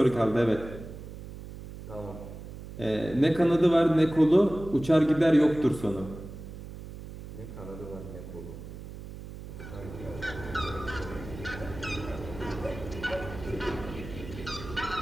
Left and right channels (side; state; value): right; noise; hum, 12 dB below the sound